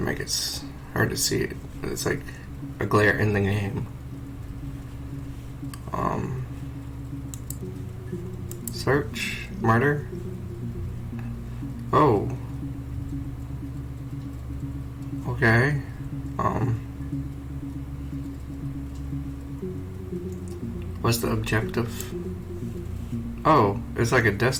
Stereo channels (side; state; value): both; identical; correlation 1.00